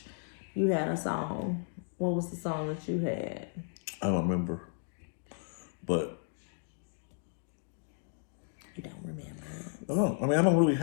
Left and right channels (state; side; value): silent; right; 55 dB below the other